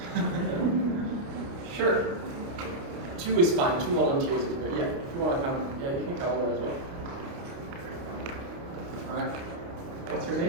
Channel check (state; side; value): late; left; 29 ms